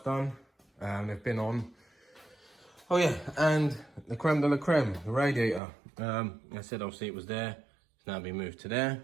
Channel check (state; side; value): drops out; left; at 5.6 s